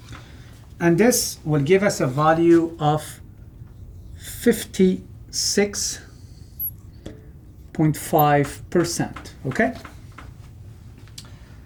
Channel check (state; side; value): identical; both; correlation 1.00